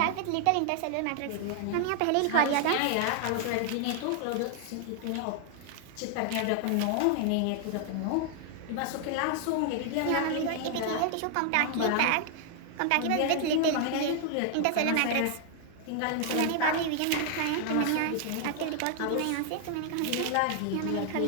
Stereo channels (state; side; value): different; both; correlation 0.00